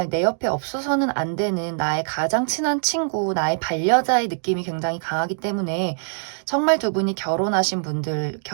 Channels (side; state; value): left; silent; digital silence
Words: 내 옆에 없어서는 안 되는 나의 가장 친한 친구, 나의 반려자의 느낌이 굉장히 강하기 때문에 정말 두 분이 결혼하신 분들,